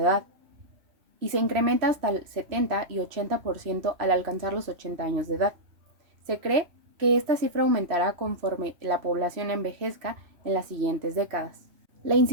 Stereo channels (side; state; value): left; late; 3.0 ms